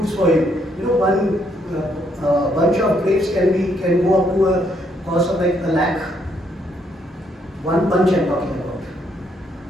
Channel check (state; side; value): normal; both; correlation 0.72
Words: for you. You know, one bunch of grapes can go up to a cost of like a lakh. One bunch I'm talking about.